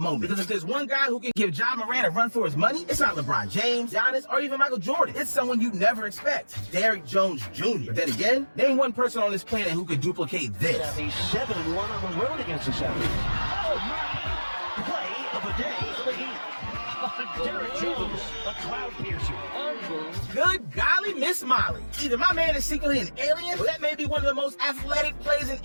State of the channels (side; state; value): both; inverted; correlation -1.00